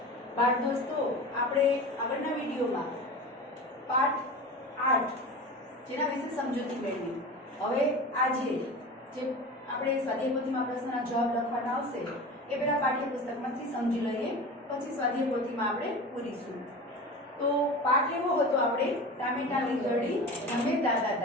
बाळ दोस्तों आपणे आगळना विडियो में पाठ 8 जेना विषे समजूती मेळवी। हवे आजे जे आपणे स्वाध्याय पोथीमां प्रश्नना जवाब लखवाना आवशे ए पेला पाठ्यपुस्तकमांथी समजी लईए, पछी स्वाध्याय पोथीमां आपणे पूरीशुं। तो पाठ एवो हतो आपणे टामेटा लींगड़ी रमे दादा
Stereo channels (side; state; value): both; normal; correlation 0.32